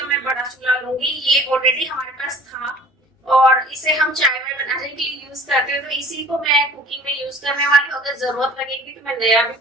मैं बड़ा चूल्हा लूंगी। ये ऑलरेडी हमारे पास था और इसे हम चाय में बनाने के लिए यूज करते हैं, तो इसी को मैं कुकिंग में यूज करने वाली हूँ। अगर जरूरत लगेगी तो मैं नया भी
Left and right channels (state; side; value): normal; both; correlation 0.47